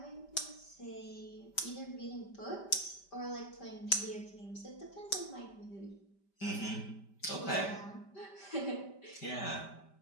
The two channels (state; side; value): late; right; 5.1 ms